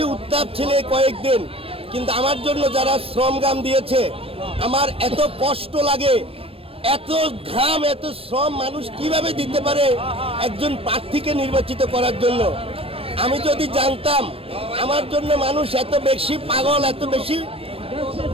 উত্তাপ ছিল কয়েকদিন। কিন্তু আমার জন্য যারা শ্রমঘাম দিয়েছে, আমার এত কষ্ট লাগে, এত ঘাম, এত শ্রম মানুষ কিভাবে দিতে পারে একজন প্রার্থীকে নির্বাচিত করার জন্য। আমি যদি জানতাম আমার জন্য মানুষ এত বেশি পাগল, এত বেশি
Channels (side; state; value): left; late; 0.28 ms